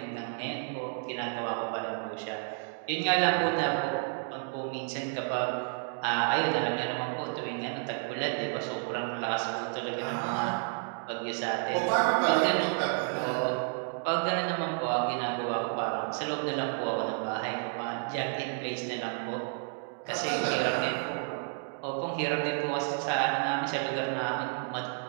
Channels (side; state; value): left; silent; 56 dB below the other